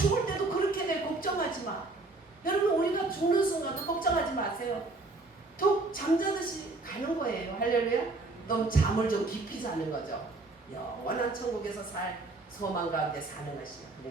때도 그렇게 돼. 걱정하지 마. 여러분 우리가 죽는 순간도 걱정하지 마세요. 툭 잠자듯이 가는 거예요. 할렐루야. 넌 잠을 좀 깊이 자는 거죠. 영원한 천국에서 살 소망 가운데 사는 것이야.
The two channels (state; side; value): quieter; left; 3.3 dB